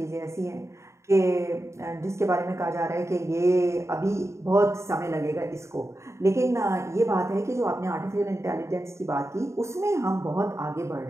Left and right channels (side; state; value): left; late; 0.14 ms